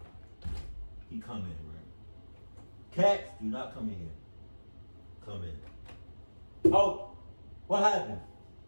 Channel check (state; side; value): inverted; both; correlation -1.00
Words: he come in, right? Cats, do not come in here. Come in. Oh, what happened?